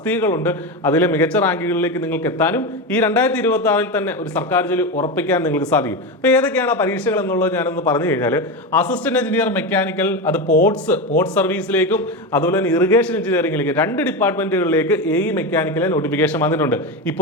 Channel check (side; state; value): both; normal; correlation 0.17